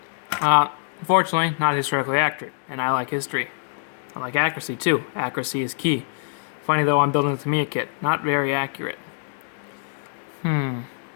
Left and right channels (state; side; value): silent; right; digital silence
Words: Unfortunately, not historically accurate, and I like history. I like accuracy too. Accuracy is key. Funny though, I'm building a Tamiya kit. Not very accurate.